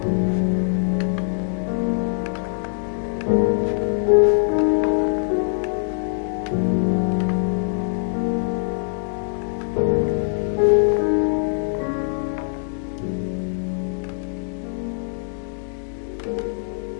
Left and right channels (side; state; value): right; silent; digital silence